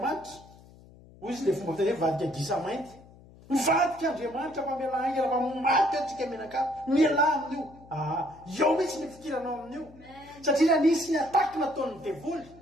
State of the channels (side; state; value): left; noise; hum, 23 dB below the sound